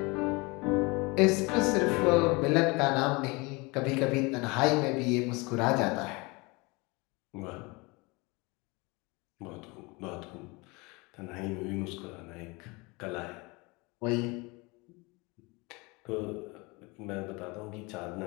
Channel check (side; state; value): right; quieter; 26.2 dB